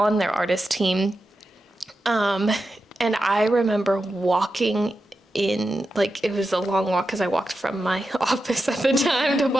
their artist team. And I remember walking in, like, it was a long walk because I walked from my office at the time to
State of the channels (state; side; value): normal; both; correlation 0.90